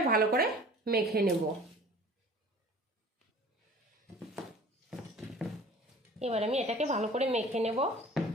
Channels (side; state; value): both; normal; correlation 0.45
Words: ভালো করে মেখে নেব। এবার আমি এটাকে ভালো করে মেখে নেব।